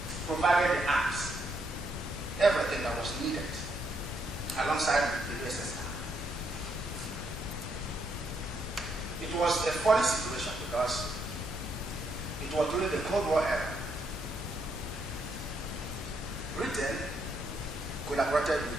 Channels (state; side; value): normal; both; correlation 0.75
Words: provided the arms, everything that was needed, alongside the USSR. It was a funny situation because it was during the Cold War era. Britain collaborated